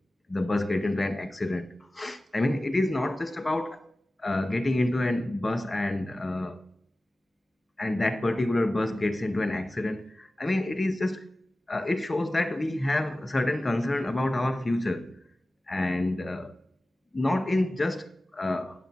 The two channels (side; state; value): both; normal; correlation 0.96